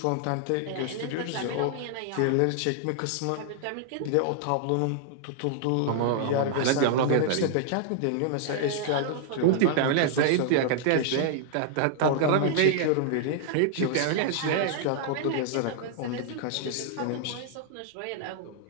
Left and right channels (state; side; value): different; both; correlation -0.01